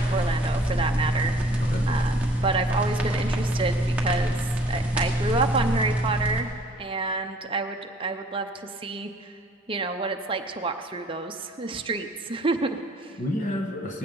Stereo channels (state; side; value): normal; both; correlation 0.55